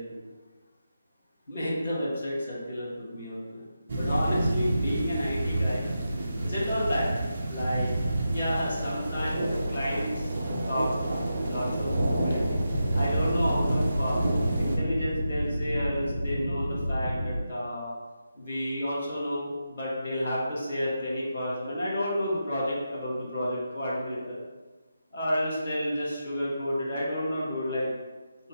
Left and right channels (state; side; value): inverted; both; correlation -0.88